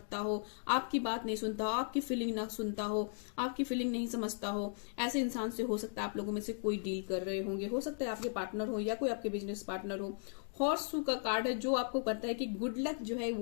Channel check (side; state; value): right; silent; digital silence